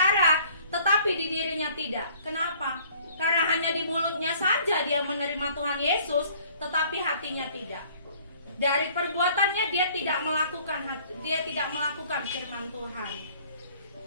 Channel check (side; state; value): both; inverted; correlation -0.56